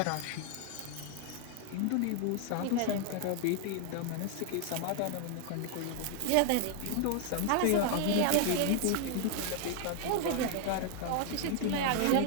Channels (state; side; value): different; both; correlation 0.00